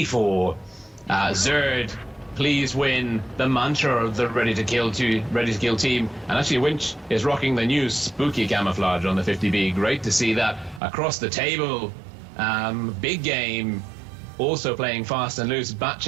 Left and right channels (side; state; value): left; drops out; at 10.8 s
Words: Zerd, please win, the mantra of the Ready to Kill team. And actually Winch is rocking the new spooky camouflage on the 50B. Great to see that across the table. Big Game also playing fast and loose.